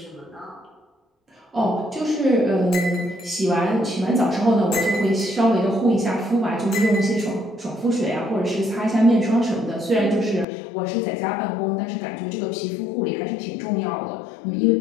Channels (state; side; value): drops out; right; at 10.5 s